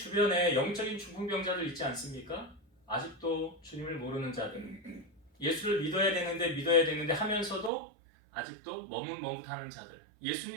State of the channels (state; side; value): drops out; left; at 7.7 s